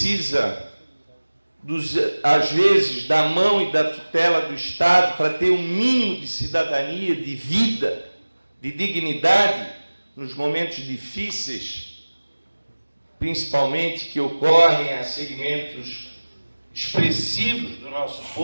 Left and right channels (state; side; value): inverted; both; correlation -1.00